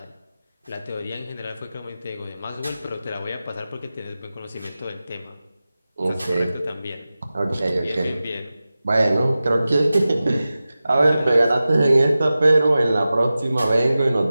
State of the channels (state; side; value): inverted; both; correlation -0.95